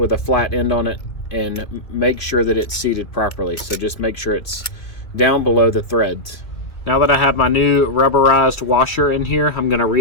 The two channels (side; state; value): right; late; 2.2 ms